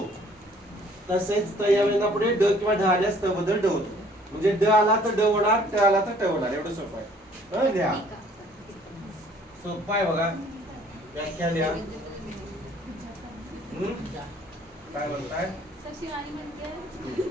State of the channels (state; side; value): normal; both; correlation 0.58